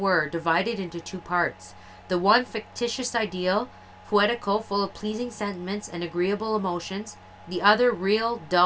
divided into two parts. The one fictitious ideal, poetical, full of pleasing sentiments and agreeable emotions. The other real,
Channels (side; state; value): both; identical; correlation 1.00